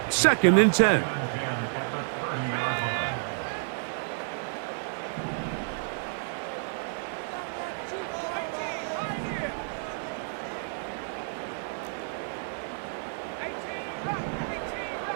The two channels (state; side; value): silent; left; digital silence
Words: second and 10.